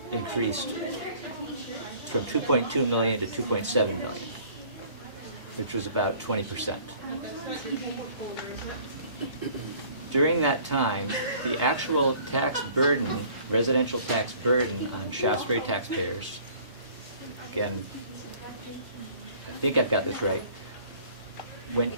increased from 2.2 million to 2.7 million, which was about 20%. During that time, the actual tax burden, residential tax burden on Shaftsbury taxpayers, again, I think I've got this right, went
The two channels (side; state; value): both; inverted; correlation -0.53